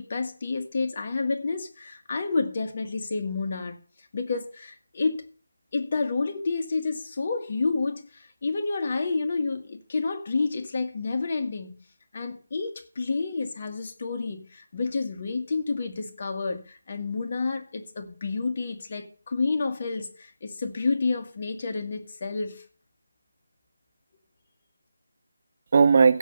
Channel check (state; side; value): inverted; both; correlation -0.88